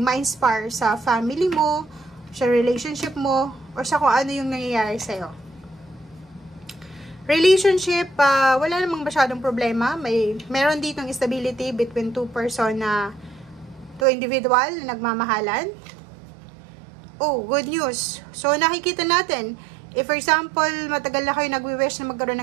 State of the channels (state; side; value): drops out; left; at 14.1 s